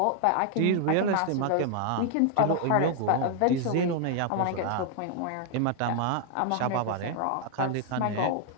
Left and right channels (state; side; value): different; both; correlation 0.00